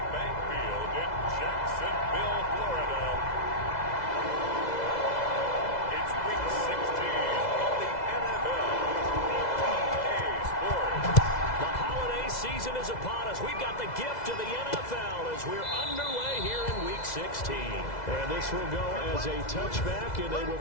Bank Field in Jacksonville, Florida, it's Week 16 of the NFL on EA Sports. The holiday season is upon us. We've got the gift of the NFL as we're underway here in Week 16. And this will go as a touchback, and they will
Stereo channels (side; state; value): right; late; 2.0 ms